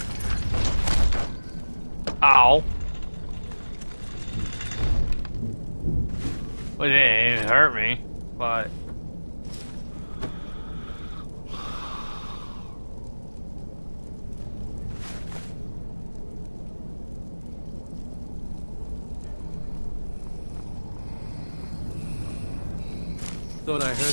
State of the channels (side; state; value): both; inverted; correlation -1.00